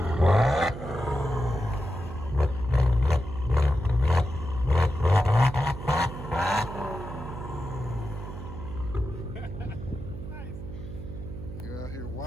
You're out here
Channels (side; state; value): right; noise; hum, 10 dB below the sound